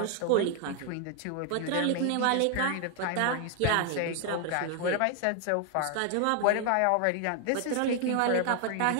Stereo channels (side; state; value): both; different; correlation 0.00